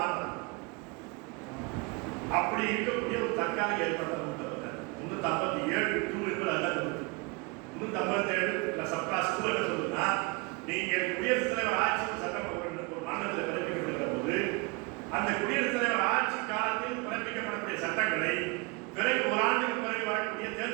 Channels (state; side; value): quieter; left; 28.5 dB